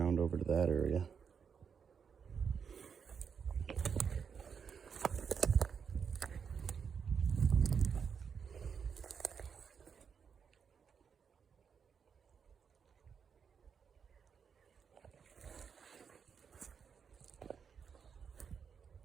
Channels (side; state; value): left; quieter; 6.6 dB